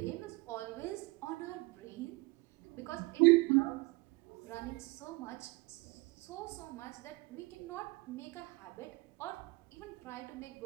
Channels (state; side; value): quieter; left; 24.1 dB